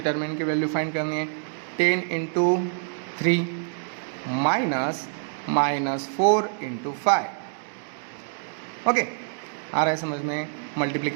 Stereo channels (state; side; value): silent; left; digital silence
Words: की वैल्यू फाइंड करनी है। 10 × 3 -4 × 5। ओके, आ रहा है समझ में।